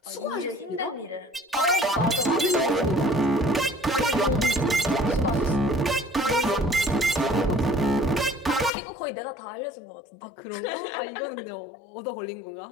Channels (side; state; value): right; drops out; at 8.7 s